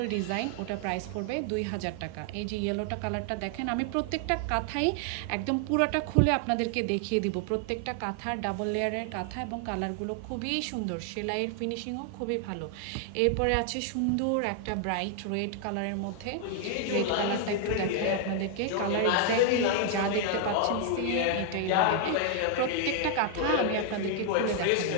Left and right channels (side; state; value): both; different; correlation 0.00